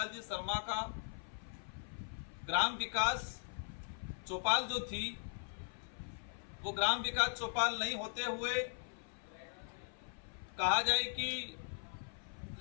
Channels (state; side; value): silent; right; 51 dB below the other